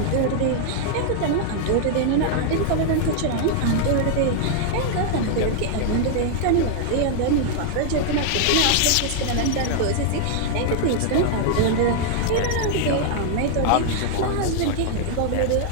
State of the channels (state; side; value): different; both; correlation 0.00